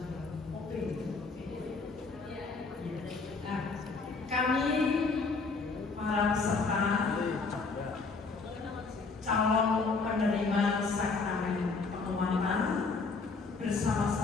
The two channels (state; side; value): quieter; right; 4.3 dB